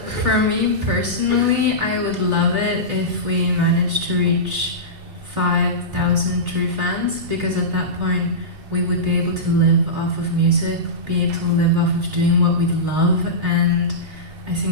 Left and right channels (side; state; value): left; late; 2.7 ms